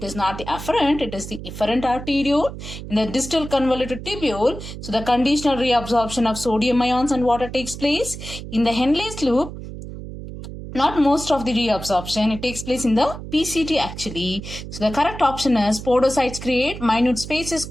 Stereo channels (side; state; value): right; noise; hum, 10 dB below the sound